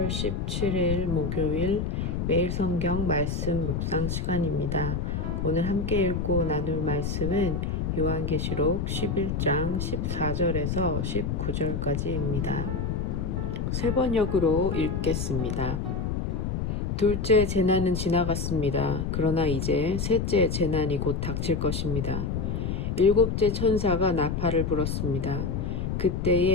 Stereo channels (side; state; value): left; noise; rumble, 1 dB below the sound